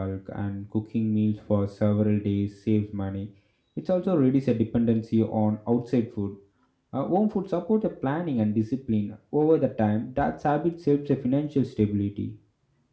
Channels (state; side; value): identical; both; correlation 1.00